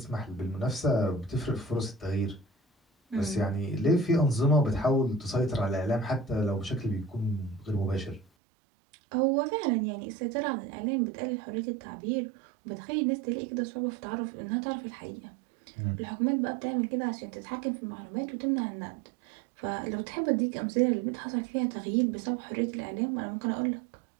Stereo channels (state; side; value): drops out; left; at 8.2 s